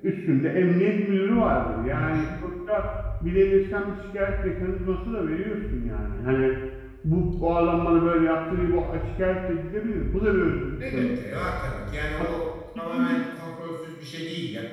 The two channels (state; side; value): identical; both; correlation 1.00